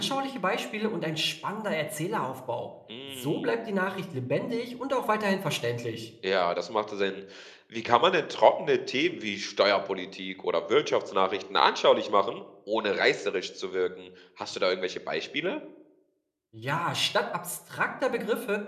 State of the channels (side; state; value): both; identical; correlation 1.00